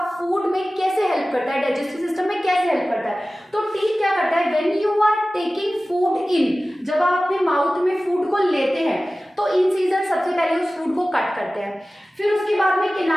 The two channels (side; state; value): both; normal; correlation 0.96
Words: फूड में कैसे हेल्प करता है, डाइजेस्टिव सिस्टम में कैसे हेल्प करता है। तो टीथ क्या करता है, when you are taking food in, जब आप अपने माउथ में फूड को लेते हैं तो इंसीजर सबसे पहले उस फूड को कट करते हैं। फिर उसके बाद में